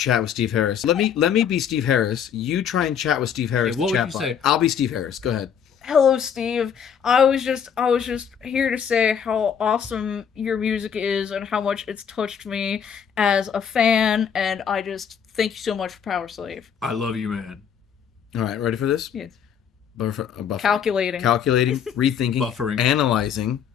with Steve Harris. Let me be Steve Harris. You try and chat with Steve Harris. Hey, what would you say? I'll be Steve Harris. Go ahead. Hello, Steve. I was just here to say how awesome your music is and how much it's touched me as a fan, and I just thank you so much for Power Slave. I love you, man. All right, ready for this? Yes. Calculating, rethinking, buffering, analyzing.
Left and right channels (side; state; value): right; quieter; 7.8 dB